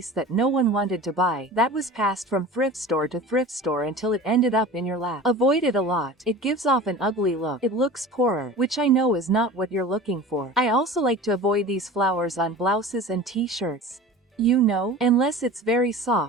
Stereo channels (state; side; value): normal; both; correlation 0.37